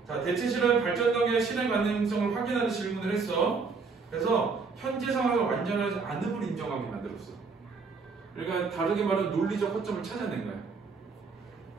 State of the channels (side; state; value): left; quieter; 4.7 dB